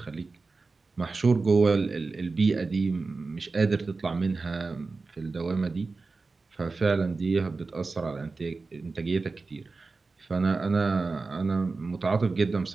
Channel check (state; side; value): quieter; left; 4.0 dB